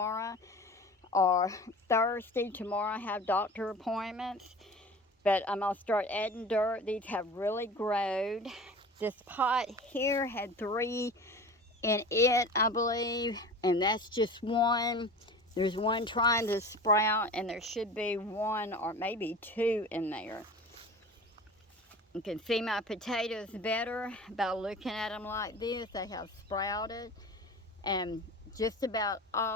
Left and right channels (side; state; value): both; normal; correlation 0.37